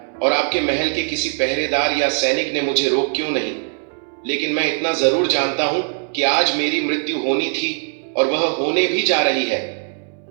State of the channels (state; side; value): silent; left; 55 dB below the other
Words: और आपके महल के किसी पहरेदार या सैनिक ने मुझे रोक क्यों नहीं। लेकिन मैं इतना जरूर जानता हूं कि आज मेरी मृत्यु होनी थी और वह होने भी जा रही है।